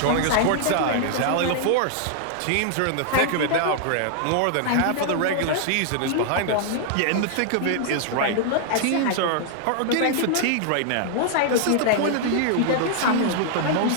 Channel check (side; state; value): both; different; correlation 0.00